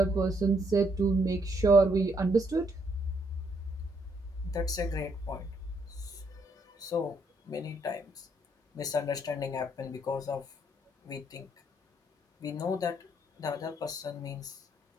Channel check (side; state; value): both; normal; correlation 0.72